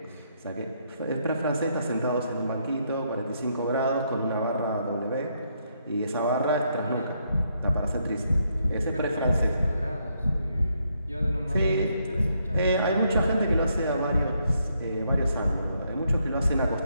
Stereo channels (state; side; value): inverted; both; correlation -0.75